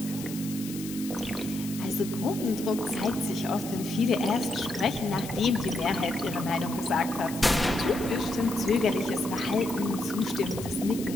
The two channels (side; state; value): left; noise; hiss, 12 dB below the sound